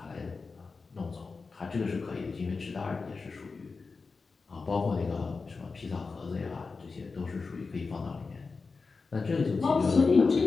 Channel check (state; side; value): quieter; right; 4.4 dB